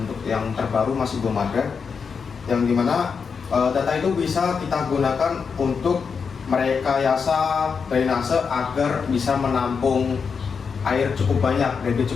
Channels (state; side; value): quieter; right; 5.8 dB